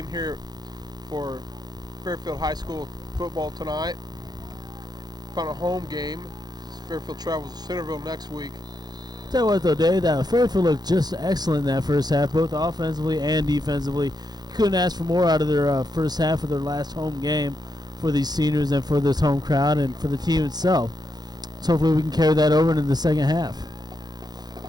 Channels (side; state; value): left; late; 0.20 ms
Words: here for Fairfield High School football tonight. final home game. Fairfield travels to Centerville next week. Tell you what, though, Dave, that Fairfield looked just excellent in that first half, both offensively and defensively. You couldn't ask for more out of their first half of their last home game for these seniors and for this home crowd and for the team itself. So hopefully we can carry that over into the second half.